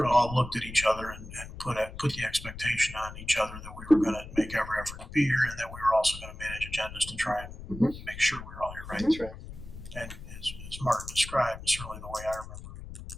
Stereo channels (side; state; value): left; noise; rumble, 12 dB below the sound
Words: of all looked at each other and put the expectation on each other that we were gonna make every effort to be here and that we were also gonna manage agendas to try and make sure we were all here, right? That's right. And as Martin described, and certainly the way I remember